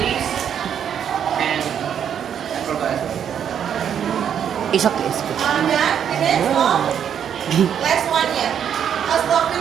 and I forgot. It's okay. Done? Finish? No? Last one, yeah. I'll stop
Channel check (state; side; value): quieter; left; 8.7 dB